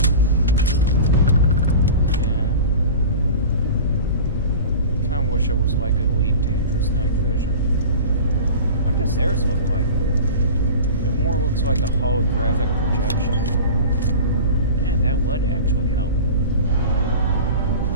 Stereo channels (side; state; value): both; inverted; correlation -0.35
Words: Yeah. Kinda wish it was like Elite Dangerous Night Vision. What does theirs look like? It more looks like a holographic projection. Yeah, that would actually help.